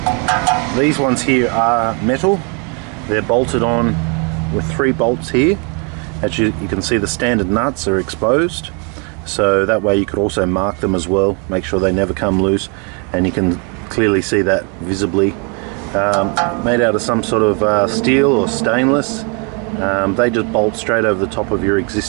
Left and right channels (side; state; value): left; quieter; 35.4 dB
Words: These ones here are metal. They're bolted on with 3 bolts here. As you can see, the standard nuts are exposed, so that way you could also mark them as well, make sure they never come loose, and you can clearly see that visibly. Made out of some sort of steel or stainless. They just bolt straight over the top of your